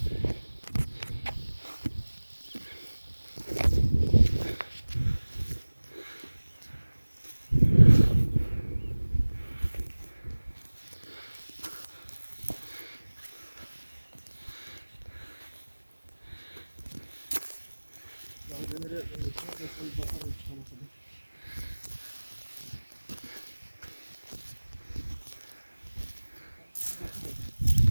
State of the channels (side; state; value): both; inverted; correlation -1.00